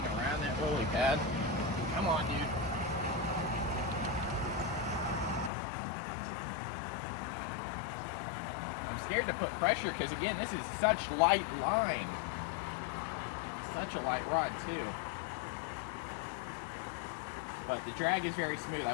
around that lily pad. Come on, dude. I'm scared to put pressure because, again, this is such light line. Such a light rod, too. But the drag is very smooth,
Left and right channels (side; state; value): right; drops out; at 5.5 s